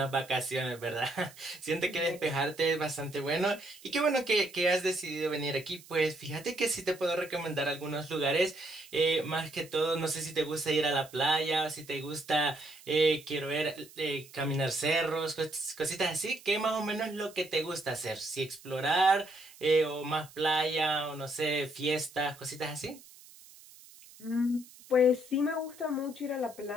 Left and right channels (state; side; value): noise; right; hiss, 21 dB below the sound